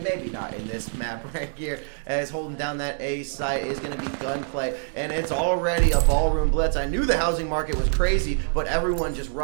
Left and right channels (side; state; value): left; silent; digital silence